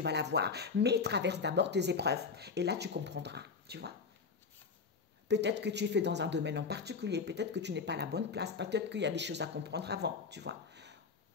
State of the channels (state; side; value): quieter; right; 5.1 dB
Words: l'avoir. Mais traverse d'abord tes épreuves. Et là, tu comprendras, tu vois. Peut-être que tu es fait dans un domaine en particulier. Peut-être que tu n'es pas à la bonne place. Peut-être qu'il y a des choses à comprendre avant, tu vois.